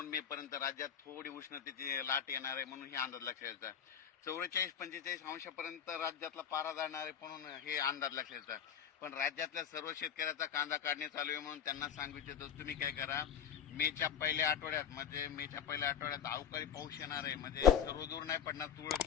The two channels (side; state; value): right; quieter; 8.5 dB